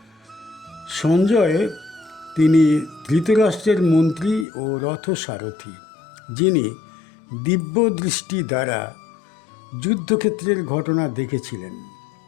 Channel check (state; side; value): drops out; right; at 4.5 s